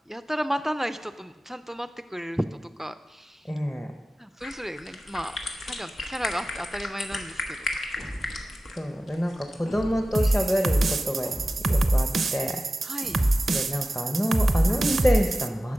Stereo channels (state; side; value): normal; both; correlation 0.95